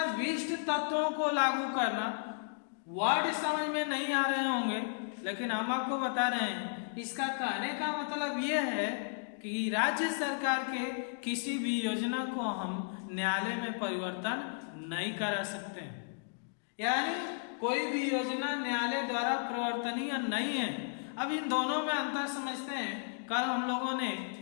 तत्वों को लागू करना। वर्ड समझ में नहीं आ रहे होंगे, लेकिन हम आपको बता रहे हैं। इसका कहने का मतलब यह है कि राज्य सरकार के किसी भी योजना को हम न्यायालय में परिवर्तन नहीं करा सकते हैं, यानी कोई भी योजना न्यायालय द्वारा परिवर्तनीय नहीं है। अब इन दोनों में अंतर समझते हैं। कल हम लोगों ने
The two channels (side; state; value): right; silent; digital silence